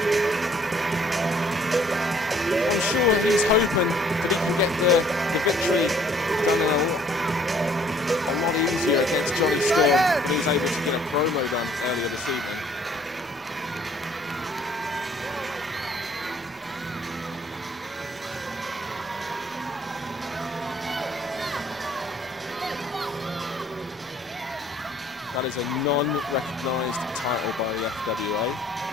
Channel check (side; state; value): both; normal; correlation 0.60